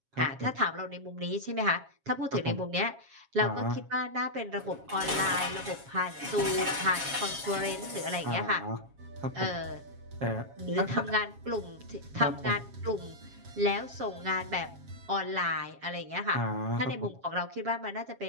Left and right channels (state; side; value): late; left; 7.3 ms